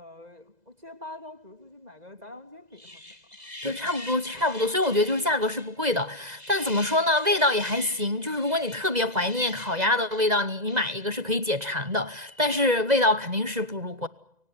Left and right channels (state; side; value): late; left; 2.0 ms